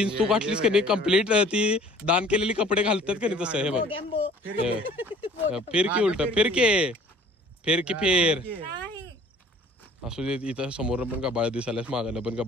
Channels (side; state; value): both; normal; correlation 0.51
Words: तू घातलीस का नाही कम्प्लीट ती दान केलेली कपडे घालतात का नाही तसं. हे बघ फिर की उलट फिर फेर असू दे. इथं समोर पण गबाळ दिसायलास, मागायला पण